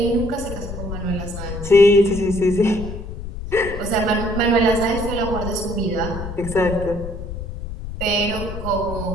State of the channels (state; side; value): noise; left; rumble, 8 dB below the sound